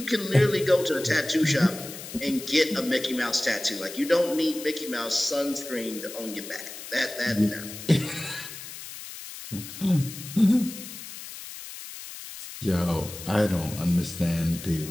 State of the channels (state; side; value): noise; left; hiss, 12 dB below the sound